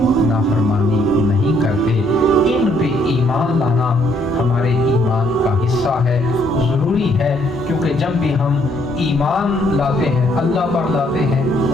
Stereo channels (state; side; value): normal; both; correlation 0.68